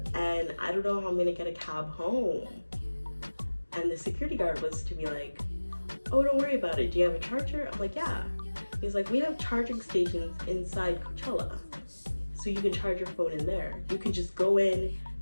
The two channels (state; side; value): inverted; both; correlation -1.00